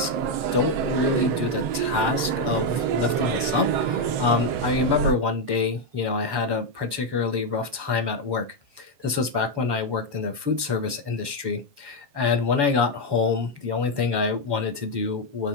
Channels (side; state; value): left; late; 7.0 ms